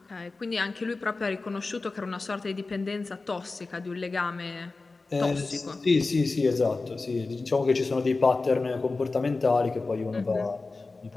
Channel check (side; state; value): right; quieter; 3.7 dB